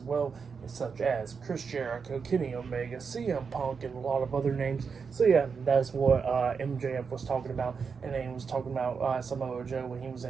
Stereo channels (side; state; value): left; quieter; 5.7 dB